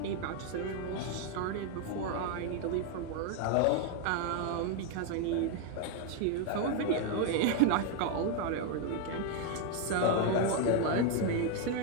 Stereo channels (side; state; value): both; different; correlation 0.01